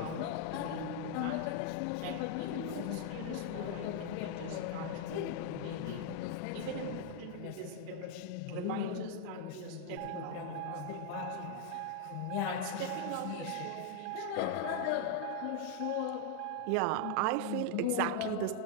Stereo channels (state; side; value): different; both; correlation 0.00